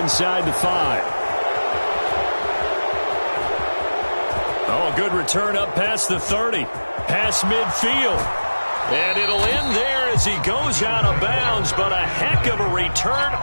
the 5. Oh, a good return up past the 30. Past midfield. And it'll end there as he goes out of bounds, but a heck of a return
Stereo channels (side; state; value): both; inverted; correlation -1.00